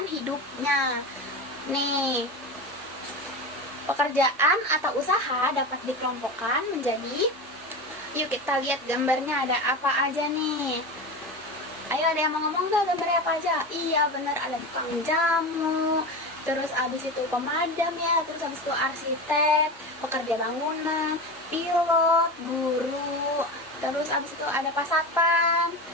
hidupnya. Nih, pekerjaan atau usaha dapat dikelompokkan menjadi, yuk kita lihat gambarnya ada apa aja nih. Ayo, ada yang mau ngomong gak gambarnya apa aja? Iya bener, ada tukang jamu, terus abis itu pemadam ya, terus abis itu arsitek, pekerja bangunan, pilot, guru, terus abis itu ada pasatpam,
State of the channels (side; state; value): both; normal; correlation 0.24